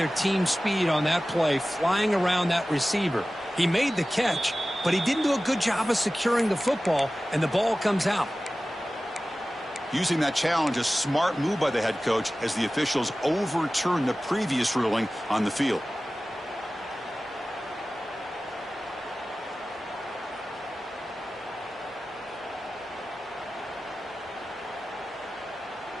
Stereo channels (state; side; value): normal; both; correlation 0.96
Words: team speed on that play, flying around that receiver. He made the catch, but he didn't do a good job of securing the football, and the ball comes out. Using that challenge, a smart move by the head coach as the officials overturn the previous ruling on the field.